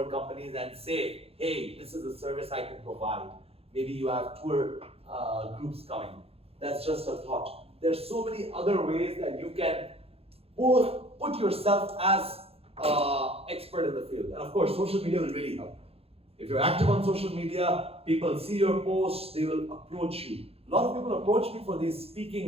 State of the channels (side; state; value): left; late; 0.29 ms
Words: companies and say, hey, this is a service I can provide. Maybe you have tour groups coming. That's just a thought. There's so many other ways that you can put yourself as expert in the field. And of course, social media will really help. If you're active on social media, people see your posts, they will approach you. A lot of people approach me for these